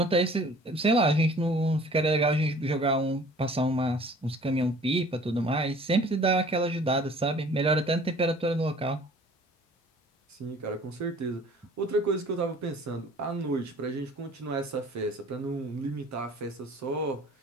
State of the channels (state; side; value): normal; both; correlation 0.50